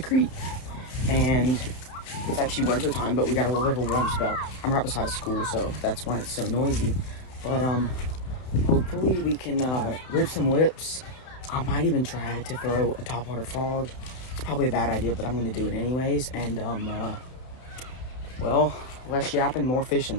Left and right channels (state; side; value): late; right; 32 ms